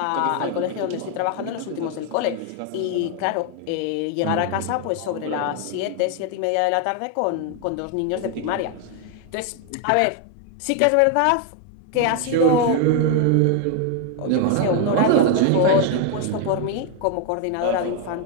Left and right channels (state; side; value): different; both; correlation 0.01